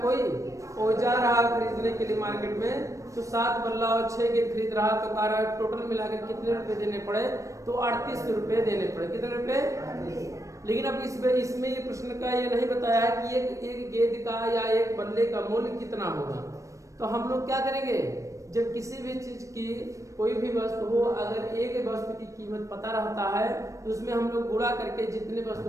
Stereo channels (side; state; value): left; late; 0.15 ms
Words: वो जा रहा खरीदने के लिए मार्केट में। तो 7 बल्ला और 6 गेंद खरीद रहा। तो कह रहा है टोटल मिलाकर कितने रुपए देने पड़े, तो 38 रुपए देने पड़े। कितने रुपए, लेकिन अब इसमें ये प्रश्न का ये नहीं बताया है कि एक गेंद का या एक बल्ले का मूल्य कितना होगा। तो हम लोग क्या करेंगे, जब किसी भी चीज की कोई भी वस्तु हो, अगर एक वस्तु की कीमत पता रहता है तो उसमें हम लोग गुणा करके जितने